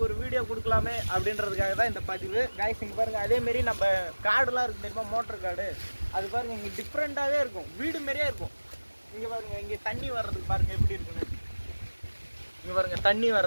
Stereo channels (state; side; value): inverted; both; correlation -1.00